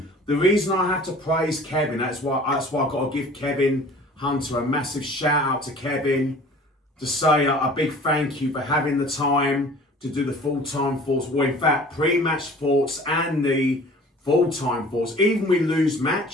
the reason I have to praise Kevin, that's why I've got to give Kevin Hunter a massive shout out to Kevin, to say a big thank you for having the time to do the full-time thoughts, well, in fact, pre-match thoughts and the full-time thoughts. Even we lose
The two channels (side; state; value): both; normal; correlation 0.46